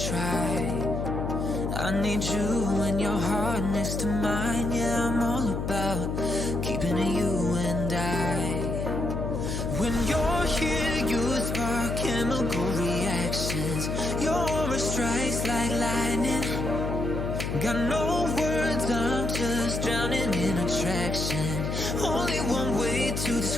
I need you and your heart next to mine. Yeah, I'm all about keeping it you and I. When you're here, you spark chemical reactions. Your aura strikes like lightning. Got no words, I'm just drowning in attraction. Only one way to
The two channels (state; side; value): noise; left; hum, 2 dB below the sound